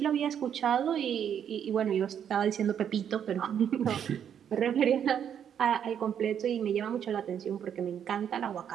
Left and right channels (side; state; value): left; quieter; 8.8 dB